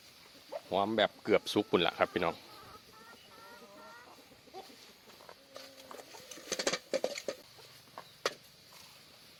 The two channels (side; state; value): both; identical; correlation 1.00